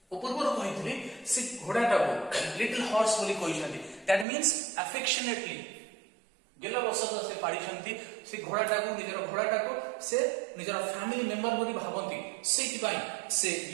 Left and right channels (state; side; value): drops out; left; at 4.2 s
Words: पूर्वरु कहितली से घोड़ाटा को लिटिल हॉर्स बोली कहइछन्ती दैट मींस अफेक्शनेटली गेला बसत से पाडिछन्ती से घोड़ाटा को से निजरा फैमिली मेंबर बोली भाबंती सेति पई से